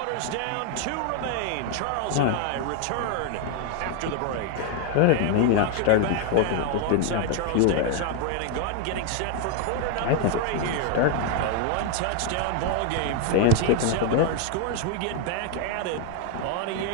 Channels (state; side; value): different; both; correlation 0.00